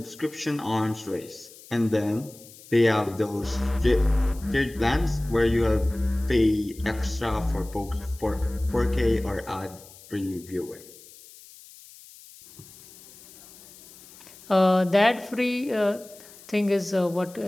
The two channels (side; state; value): left; noise; hiss, 21 dB below the sound